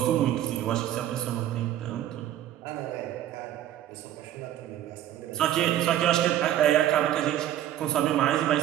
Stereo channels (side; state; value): left; quieter; 12.1 dB